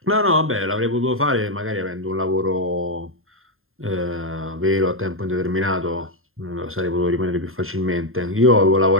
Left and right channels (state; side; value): late; left; 0.61 ms